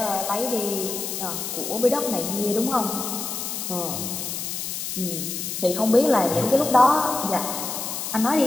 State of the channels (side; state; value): left; noise; hiss, 5 dB below the sound